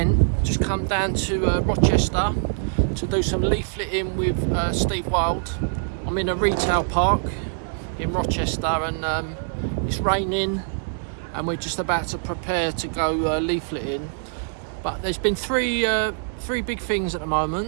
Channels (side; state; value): left; silent; digital silence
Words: just come down to Rochester to do some leafleting with Steve Wild. I'm in a retail park in Rochester and it's raining and we're just about to prepare to go leafleting. But there's been three big things at the